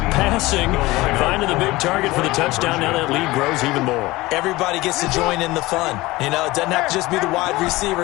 passing. Finding the big target for the touchdown. Now that lead grows even more. Everybody gets to join in the fun. You know, it doesn't have to just be the wide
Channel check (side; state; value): right; quieter; 19.9 dB